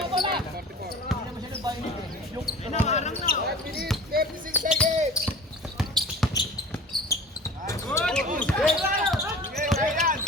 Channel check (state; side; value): normal; both; correlation 0.40